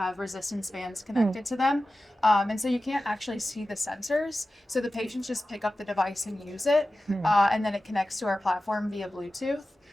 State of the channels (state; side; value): normal; both; correlation 0.94